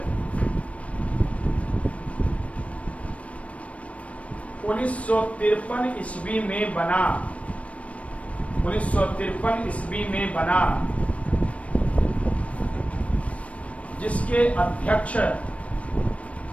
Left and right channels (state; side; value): late; right; 0.064 ms